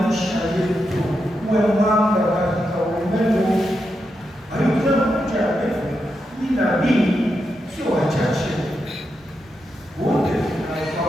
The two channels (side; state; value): both; normal; correlation 0.85